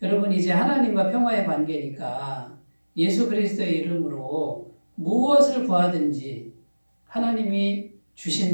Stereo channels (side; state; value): both; inverted; correlation -1.00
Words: 여러분, 이제 하나님과 평화의 관계니까 예수 그리스도의 이름으로 무엇을 구하든지 하나님이